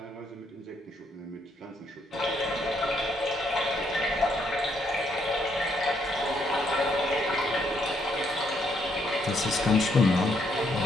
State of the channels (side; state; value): both; normal; correlation 0.73